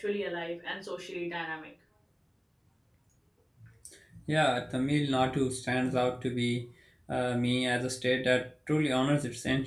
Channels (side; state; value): both; identical; correlation 1.00